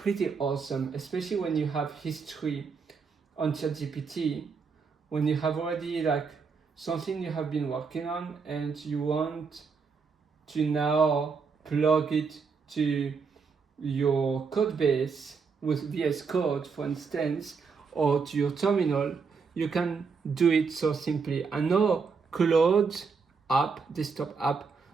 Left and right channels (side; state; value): left; quieter; 5.3 dB